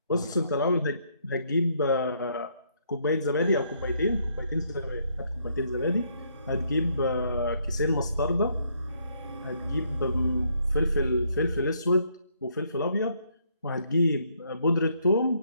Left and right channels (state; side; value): inverted; both; correlation -0.71